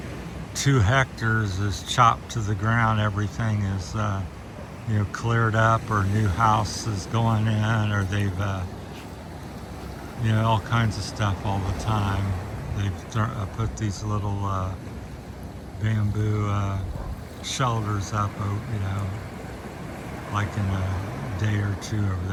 2 hectares is chopped to the ground. Everything is cleared up, or new house is going in, or they've all kinds of stuff all the time. They've put these little bamboo shelters up, like in a day or 2 over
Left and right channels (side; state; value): both; identical; correlation 1.00